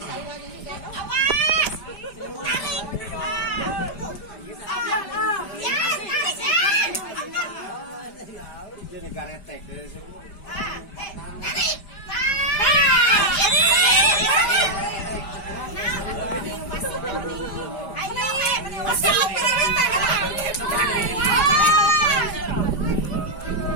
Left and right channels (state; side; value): late; right; 5.0 ms